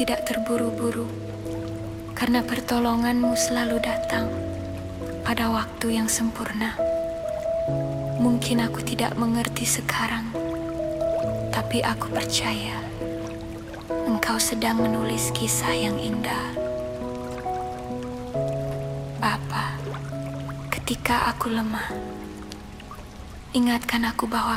terburu-buru, karena pertolongan-Mu selalu datang pada waktu yang sempurna. Mungkin aku tidak mengerti sekarang, tapi aku percaya Engkau sedang menulis kisah yang indah. Bapa, ketika aku lemah, ingatkan aku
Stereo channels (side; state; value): both; identical; correlation 1.00